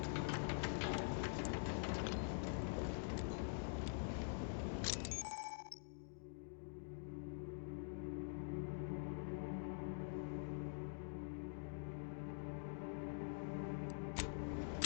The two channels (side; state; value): right; silent; digital silence